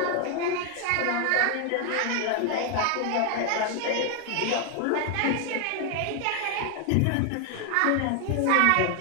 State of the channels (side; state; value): both; different; correlation 0.00